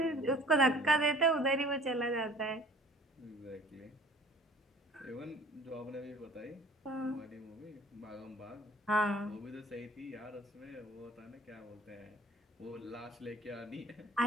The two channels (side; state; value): both; normal; correlation 0.49